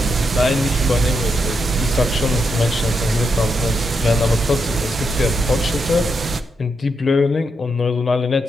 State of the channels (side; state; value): both; normal; correlation 0.82